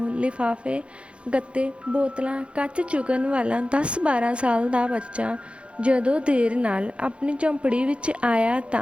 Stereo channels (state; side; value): late; left; 0.059 ms